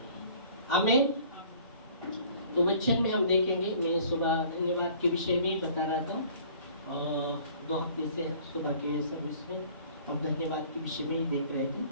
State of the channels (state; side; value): inverted; both; correlation -0.51